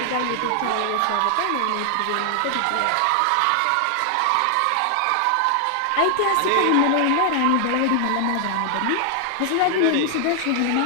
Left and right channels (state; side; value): different; both; correlation 0.00